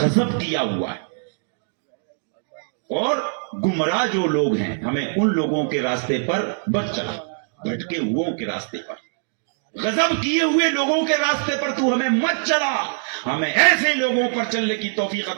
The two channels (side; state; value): left; silent; digital silence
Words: کیا ہوا ہے، اور گمراہ جو لوگ ہیں ہمیں ان لوگوں کے راستے پر مت چلا، بھٹکے ہوئوں کے راستے پر، غضب کیے ہوئے لوگوں کے راستے پر تو ہمیں مت چلا، ہمیں ایسے لوگوں پر چلنے کی توفیق